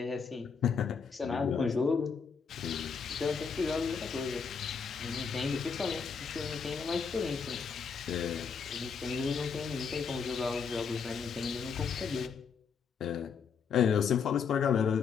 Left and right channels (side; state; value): right; quieter; 6.0 dB